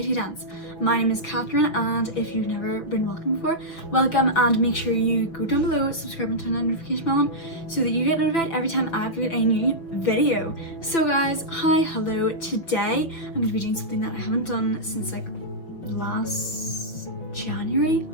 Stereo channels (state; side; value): late; right; 6.1 ms